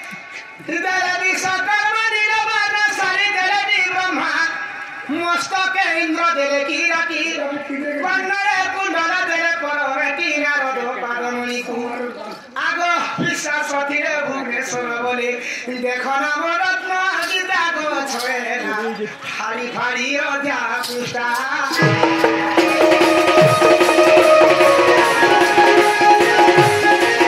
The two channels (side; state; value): both; identical; correlation 1.00